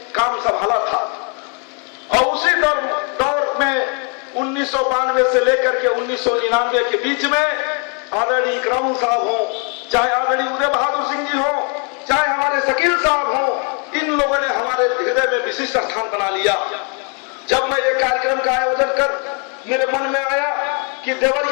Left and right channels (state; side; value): quieter; right; 36.9 dB